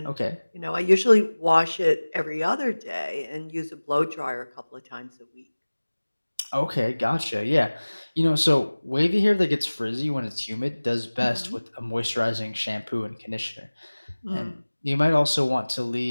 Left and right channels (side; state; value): both; inverted; correlation -1.00